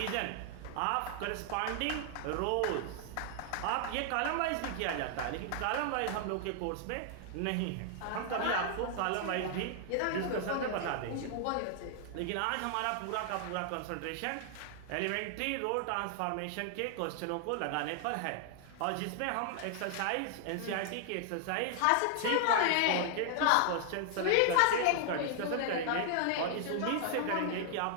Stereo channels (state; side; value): different; both; correlation 0.00